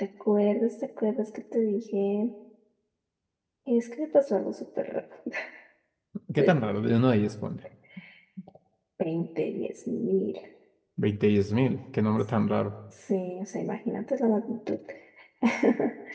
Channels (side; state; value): both; identical; correlation 1.00